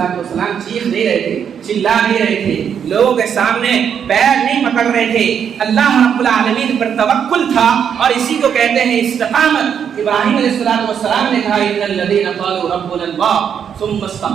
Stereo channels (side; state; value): left; quieter; 7.9 dB